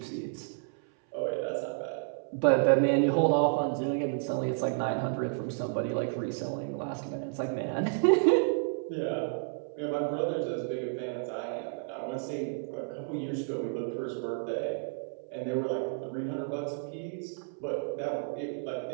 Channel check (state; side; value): silent; left; 57 dB below the other